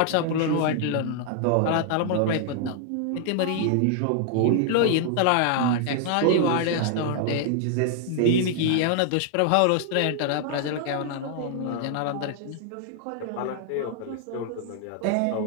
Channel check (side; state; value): both; different; correlation 0.00